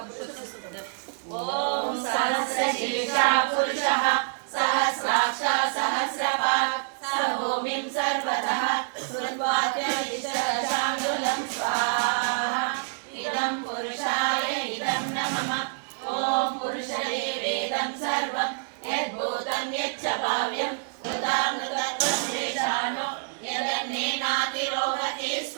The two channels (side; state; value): left; silent; digital silence